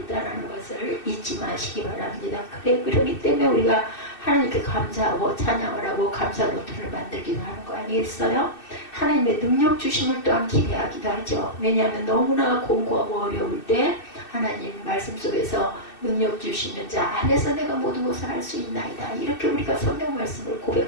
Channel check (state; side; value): late; right; 2.6 ms